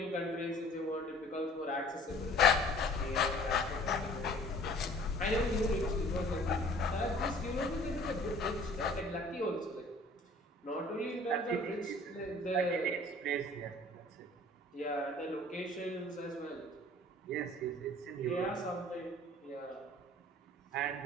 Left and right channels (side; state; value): both; normal; correlation 0.50